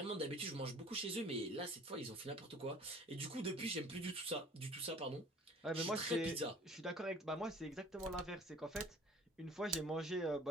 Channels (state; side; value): normal; both; correlation 0.49